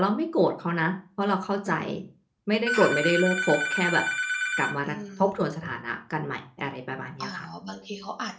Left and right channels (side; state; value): both; identical; correlation 1.00